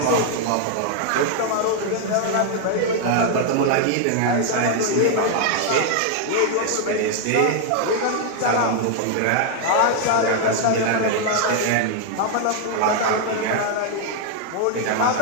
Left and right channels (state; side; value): different; both; correlation 0.00